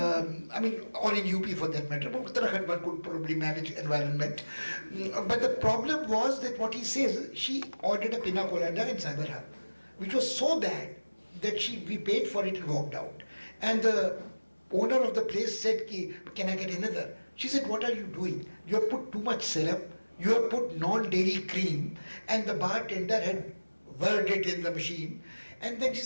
in UP for that matter. But Uttarakhand one could probably manage environment. But the problem was that what he says, she ordered a pina colada in Cyberhub, which was so bad that we paid for it and walked out. And the owner of the place said, can I get another? She said, what are you doing? You have put too much syrup, you have put non-dairy cream, and the bartender had whirled it in the machine. And then she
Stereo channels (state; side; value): inverted; both; correlation -1.00